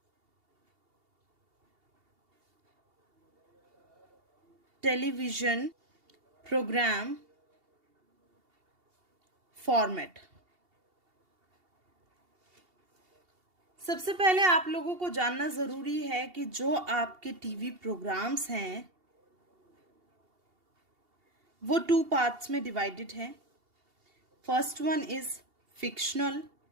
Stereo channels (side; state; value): left; late; 2.8 ms